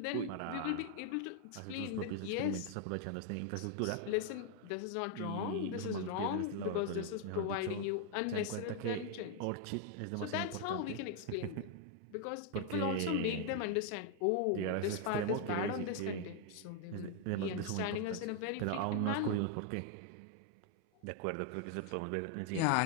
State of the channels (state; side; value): different; both; correlation 0.00